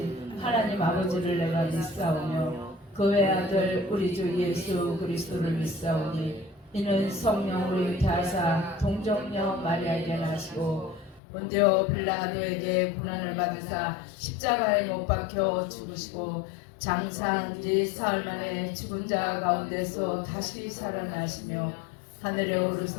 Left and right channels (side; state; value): right; drops out; at 11.2 s